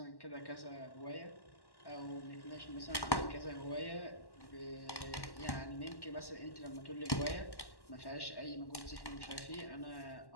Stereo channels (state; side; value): late; right; 1.1 ms